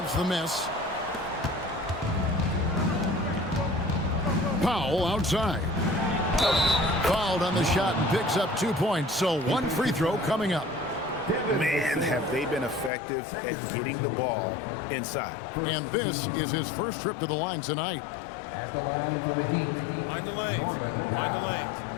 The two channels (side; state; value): right; drops out; at 12.9 s